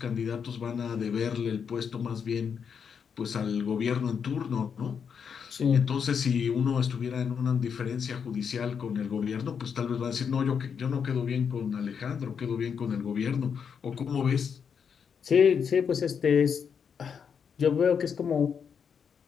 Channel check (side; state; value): right; quieter; 6.9 dB